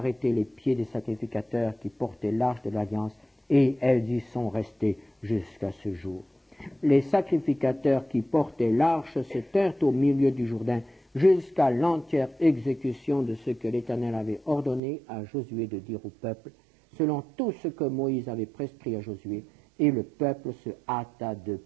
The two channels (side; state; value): left; drops out; at 14.8 s